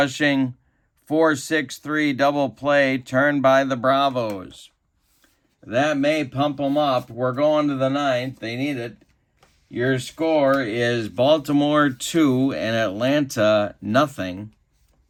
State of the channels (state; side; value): identical; both; correlation 1.00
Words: 4-6-3 double play turned by the Bravos. That may pump them up. We're going to the 9th. They need it. Your score is Baltimore 2 and Atlanta nothing.